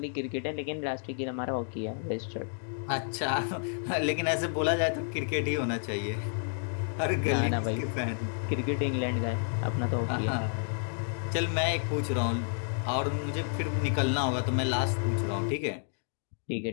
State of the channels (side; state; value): right; silent; 57 dB below the other